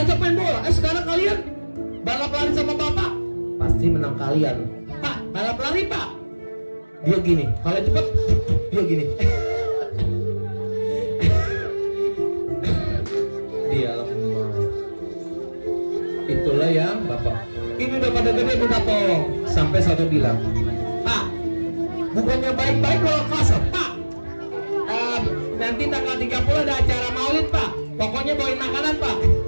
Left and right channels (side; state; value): both; inverted; correlation -1.00